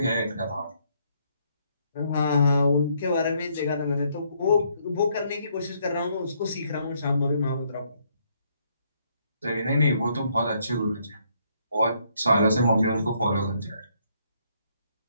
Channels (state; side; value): inverted; both; correlation -0.71